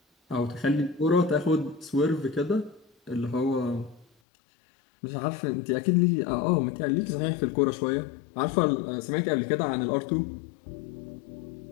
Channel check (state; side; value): drops out; right; at 4.0 s